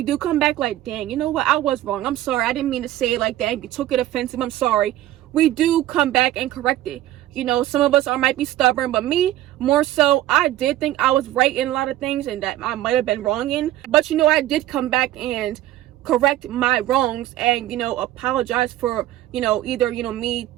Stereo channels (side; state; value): left; quieter; 14.2 dB